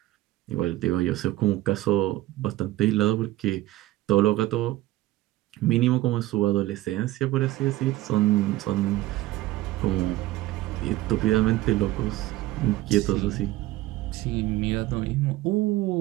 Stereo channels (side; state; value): left; quieter; 16.5 dB